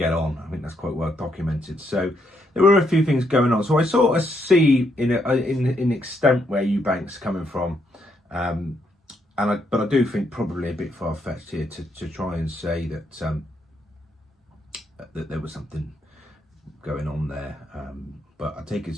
on. I think that's quite well documented. So there were a few things going on. So I sort of see in extent where Eubank's coming from, but I do think probably a bit far-fetched here to try and say that that there was something going on there. But I take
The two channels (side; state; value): both; normal; correlation 0.76